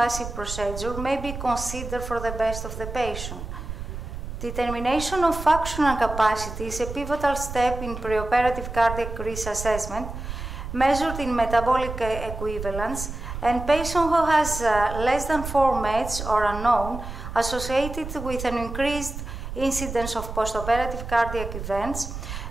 procedure, may be considered for the best of the patient. Determination of functional capacity is a pivotal step in preoperative cardiac risk assessment, measured in metabolic equivalence, and patient who has less than 4 MEDs or unknown associated with an increased incidence of postoperative cardiac events,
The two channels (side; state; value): right; noise; rumble, 8 dB below the sound